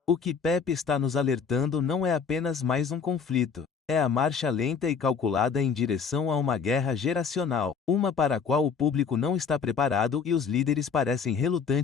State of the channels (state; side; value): quieter; right; 6.0 dB